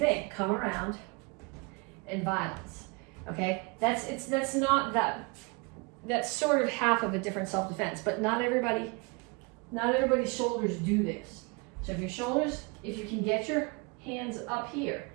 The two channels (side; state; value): left; quieter; 29.7 dB